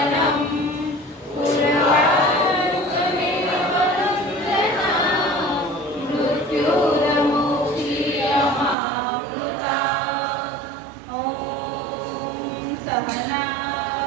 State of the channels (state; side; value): drops out; left; at 8.8 s